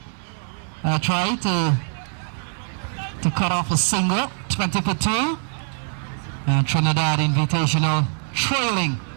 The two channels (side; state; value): left; silent; 61 dB below the other